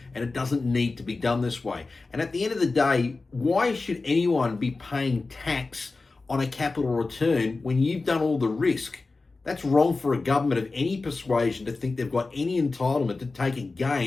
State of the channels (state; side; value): quieter; right; 3.7 dB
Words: and it doesn't need to be done this way. And at the end of the day, why should anyone be paying tax on a capital return when you've done all the risk? That's wrong for a government of any persuasion to think they've got any entitlement to take a